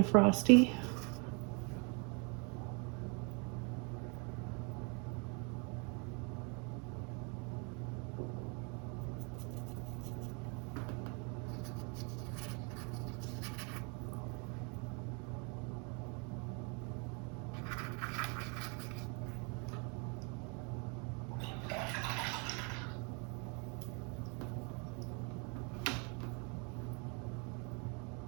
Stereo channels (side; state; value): left; quieter; 34.3 dB